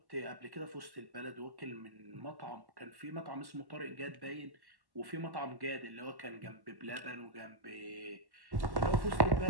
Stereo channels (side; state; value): left; late; 1.1 ms